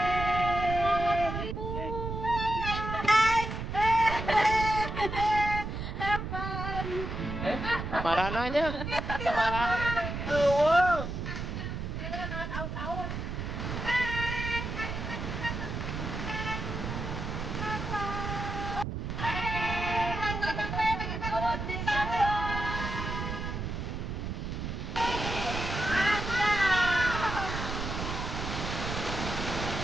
Marah nanya. Marah.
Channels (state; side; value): noise; right; rumble, 4 dB below the sound